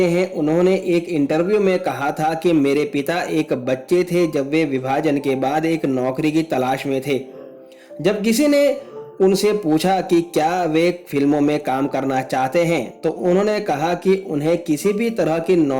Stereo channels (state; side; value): identical; both; correlation 1.00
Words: हैं, उन्होंने एक इंटरव्यू में कहा था कि मेरे पिता एक बच्चे थे जब वे विभाजन के बाद एक नौकरी की तलाश में थे। जब किसी ने उनसे पूछा कि क्या वे फिल्मों में काम करना चाहते हैं, तो उन्होंने कहा कि उन्हें किसी भी तरह की